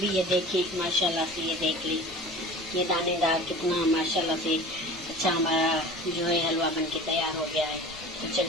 ये देखिए माशाल्लाह से, ये देख ली, ये दानेदार कितना माशाल्लाह से अच्छा हमारा जो है हलवा बन के तैयार हो गया है। तो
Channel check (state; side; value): noise; left; rumble, 23 dB below the sound